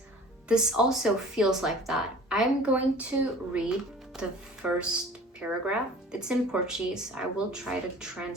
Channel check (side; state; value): both; normal; correlation 0.45